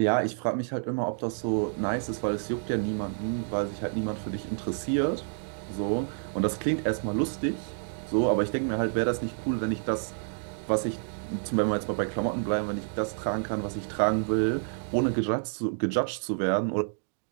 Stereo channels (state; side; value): silent; left; digital silence